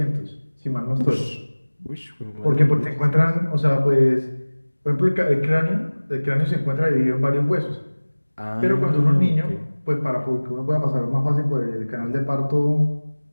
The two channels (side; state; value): both; inverted; correlation -1.00